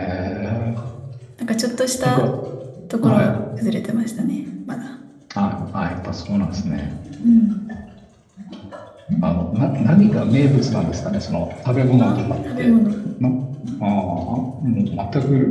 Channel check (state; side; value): identical; both; correlation 1.00